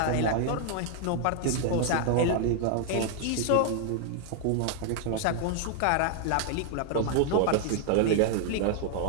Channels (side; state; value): both; different; correlation 0.00